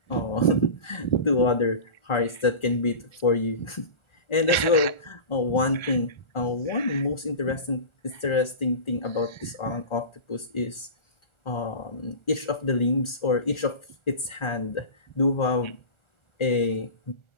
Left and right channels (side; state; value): right; late; 1.4 ms